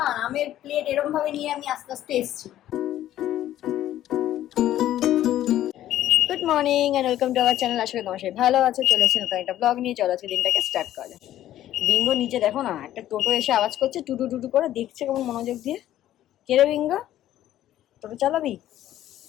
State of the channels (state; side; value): quieter; right; 12.8 dB